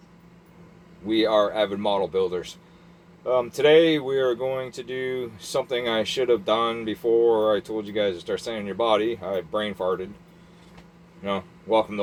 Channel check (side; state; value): both; identical; correlation 1.00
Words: we are avid model builders. Today we are going to do something I should have done before I told you guys to start sanding your body. I brain farted. Welcome to